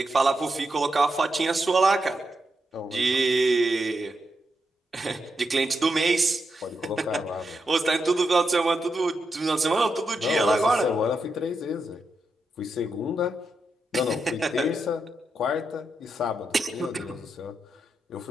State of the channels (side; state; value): both; normal; correlation 0.85